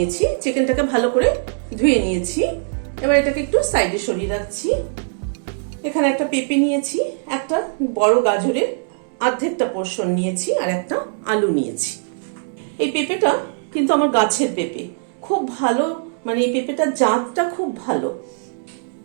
চিকেনটাকে ভালো করে ধুয়ে নিয়েছি। এবার এটাকে একটু সাইডে সরিয়ে রাখছি। এখানে একটা পেঁপে নিয়েছি, একটা বড় গাজরের অর্ধেকটা পোর্শন নিয়েছি, আর একটা আলু নিয়েছি। এই পেঁপেটা কিন্তু আমার গাছের পেঁপে, খুব ভালো, মানে এই পেঁপেটার জাতটা খুব ভালো।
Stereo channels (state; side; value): silent; left; 65 dB below the other